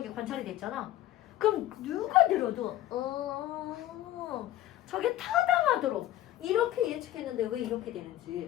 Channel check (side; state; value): right; quieter; 13.8 dB